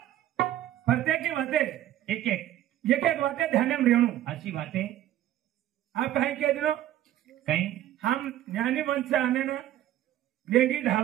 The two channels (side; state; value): left; quieter; 12.9 dB